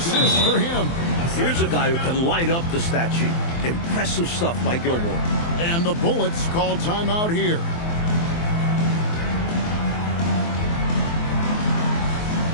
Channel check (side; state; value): right; late; 24 ms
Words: for him. Here's a guy who can light up the stat sheet. Impressive stuff by Gilmore. And the Bullets call timeout here.